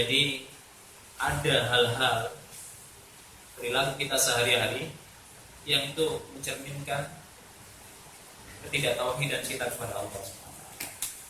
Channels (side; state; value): both; identical; correlation 1.00